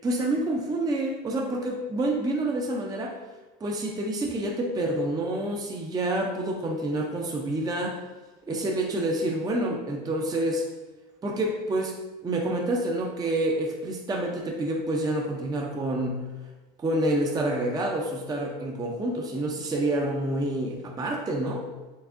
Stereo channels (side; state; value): both; normal; correlation 0.44